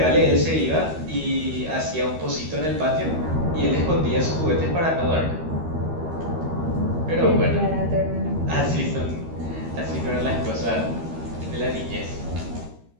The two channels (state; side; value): late; left; 13 ms